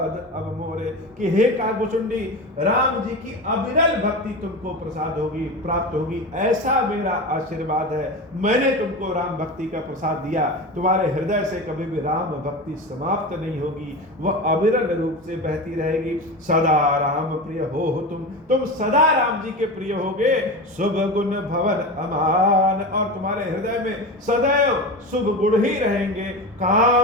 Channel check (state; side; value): normal; both; correlation 0.25